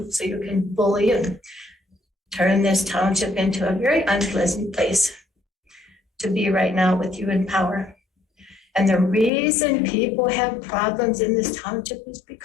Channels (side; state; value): right; drops out; at 9.3 s